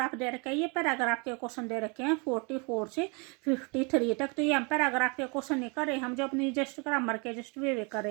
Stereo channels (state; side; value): quieter; left; 31.8 dB